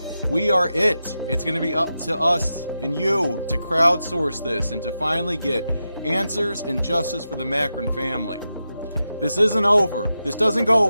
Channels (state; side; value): inverted; both; correlation -0.89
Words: we are it. It's going to be up to us and you to crowdsource this and to finally get answers and justice for the Macron family. This isn't over. This doesn't go